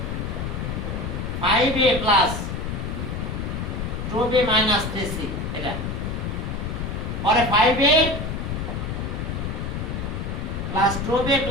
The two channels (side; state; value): left; noise; rumble, 3 dB below the sound